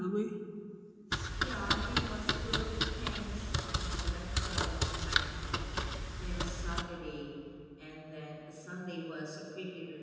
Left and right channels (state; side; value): identical; both; correlation 1.00